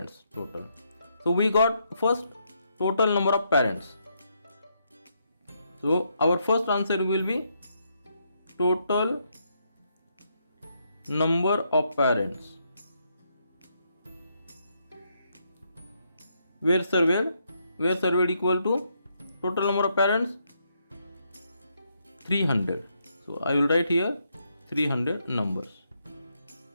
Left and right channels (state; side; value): inverted; both; correlation -0.77